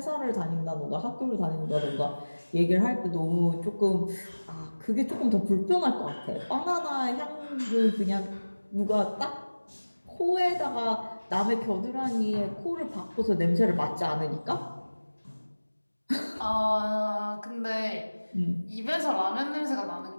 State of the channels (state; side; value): inverted; both; correlation -1.00